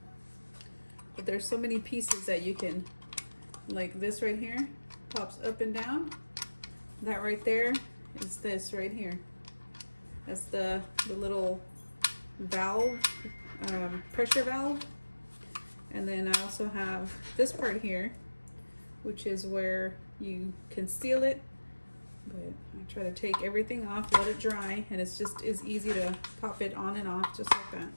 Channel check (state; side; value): inverted; both; correlation -1.00